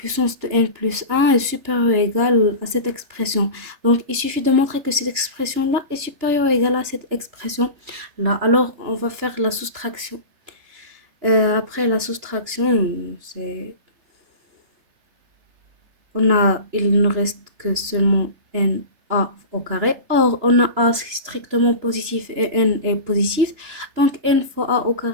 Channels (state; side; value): late; left; 3.3 ms